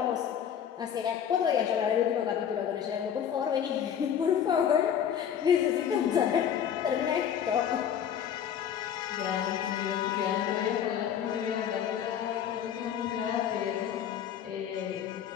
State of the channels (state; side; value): quieter; right; 8.9 dB